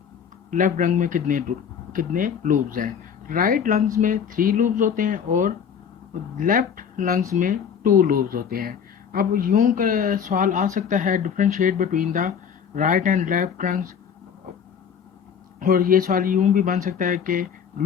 लेफ्ट लंग में कितने लूब्स हैं। राइट लंग्स में 3 लूब्स होते हैं और लेफ्ट लंग्स में 2 लूब्स होते हैं। अब यूं का सवाल आ सकता है, differentiate between the right and left lungs, और ये सवाल यूं भी बन सकता है कि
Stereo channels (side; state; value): right; quieter; 7.5 dB